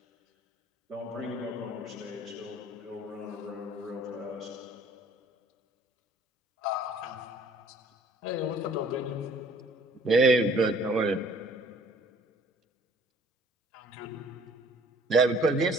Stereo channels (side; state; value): both; normal; correlation 0.55